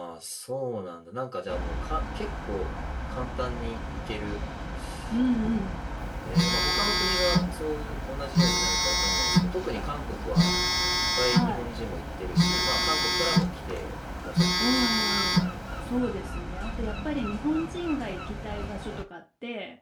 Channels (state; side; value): identical; both; correlation 1.00